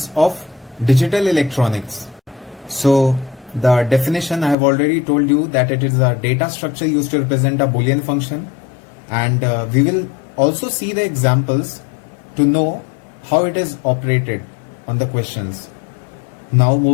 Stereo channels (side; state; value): right; drops out; at 4.5 s